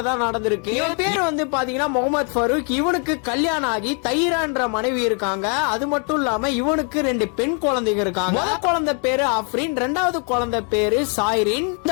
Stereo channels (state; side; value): quieter; right; 39.2 dB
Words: தான் நடந்திருக்கு. இவன் பேர் வந்து பாத்தீங்கன்னா முகமது ஃபரூக். இவனுக்கு கல்யாணம் ஆகி தைரான்ற மனைவி இருக்காங்க. அது மட்டும் இல்லாம இவனுக்கு 2 பெண் குழந்தைங்க இருக்காங்க. முதல் குழந்தை பேரு அஃப்ரின், 2வது குழந்தை பேரு சாய்ரின்.